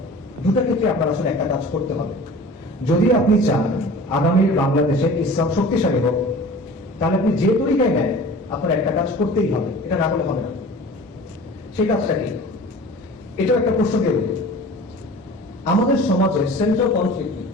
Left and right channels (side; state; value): both; normal; correlation 0.41